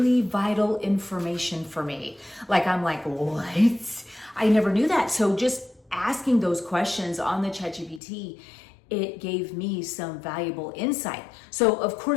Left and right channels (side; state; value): right; drops out; at 8.0 s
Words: vital information for me. Like, I'm like, what? I never knew that. So just asking those questions on the ChatGPT, it gave me some valuable insight. So of